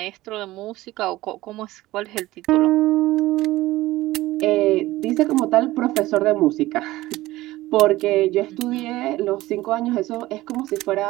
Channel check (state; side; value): quieter; left; 17.5 dB